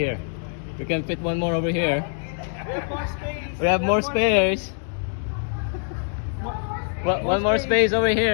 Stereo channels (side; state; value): right; silent; 59 dB below the other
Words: We can fit one more over here. We have more spares. One more space over